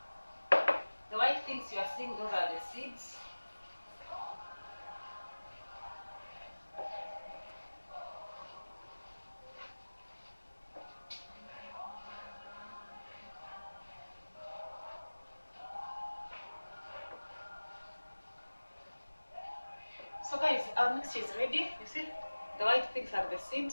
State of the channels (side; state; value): both; inverted; correlation -1.00